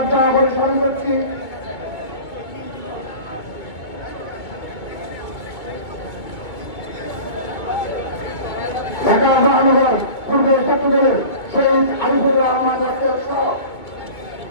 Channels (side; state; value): right; late; 2.2 ms